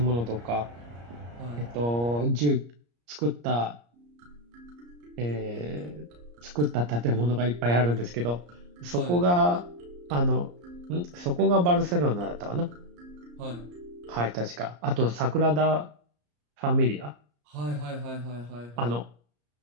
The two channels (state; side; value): late; left; 34 ms